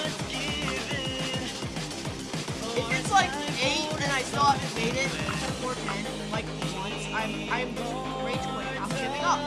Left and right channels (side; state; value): both; identical; correlation 1.00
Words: If it's like 8 and I still haven't made it to 410, like once, I'm rage quitting. I'm giving up.